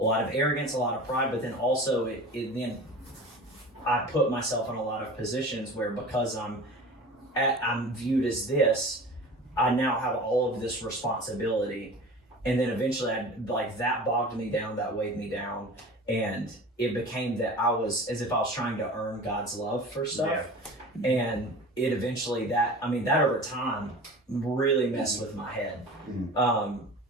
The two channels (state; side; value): normal; both; correlation 0.37